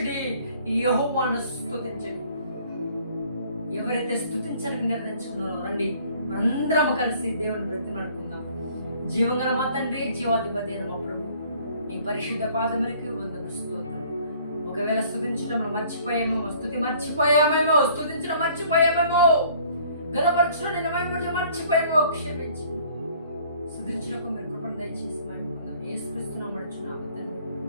యెహోవాను స్తుతించుడి. ఎవరైతే స్తుతించడానికి నిర్ణయించుకున్నారో రండి మనందరం కలిసి దేవుని బ్రతిమాడుకుందాం. జీవంగల మా తండ్రి, జీవాధిపతి అయిన మా ప్రభు, నీ పరిశుద్ధ పాదములకి వందనములు, స్తోత్రం. ఒకవేళ స్తుతించడంలో మర్చిపోయామేమో, స్తుతించడం మర్చిపోయామేమో, గణపరచడం నేను మహిమపరచడం మర్చిపోయామో క్షమించి స్తుతించడానికి మీరు కృపను దయచేసి మహిమ పొందాం. యేసుక్రీస్తు నామమున అడుగుచున్నాము తండ్రి,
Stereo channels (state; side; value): inverted; both; correlation -0.57